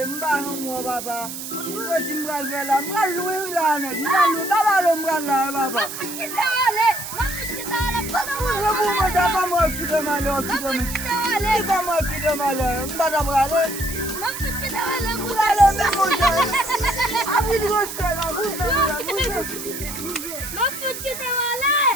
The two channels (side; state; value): right; noise; hiss, 8 dB below the sound